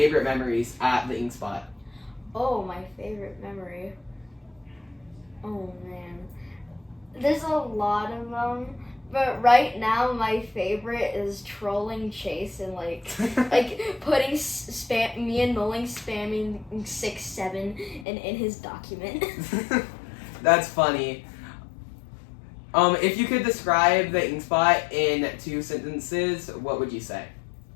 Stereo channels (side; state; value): right; drops out; at 18.1 s